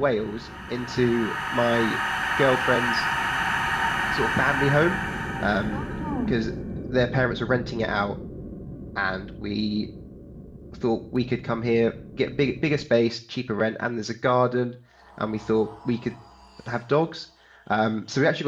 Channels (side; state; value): both; identical; correlation 1.00